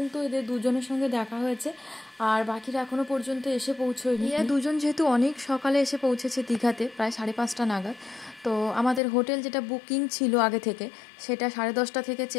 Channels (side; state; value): right; drops out; at 9.0 s